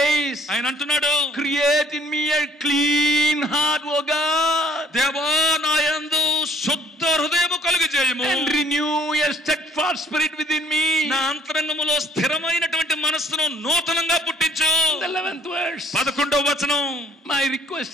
ఆయన అంటున్నాడు, create in me a clean heart, O God, దేవా నా యందు శుద్ధ హృదయము కలుగజేయము. and renew a steadfast spirit within me. నా అంతరంగములో స్థిరమైనటువంటి మనస్సును నూతనంగా పుట్టించు. The 11th verse, 11వ వచనం, my request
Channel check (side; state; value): both; normal; correlation 0.60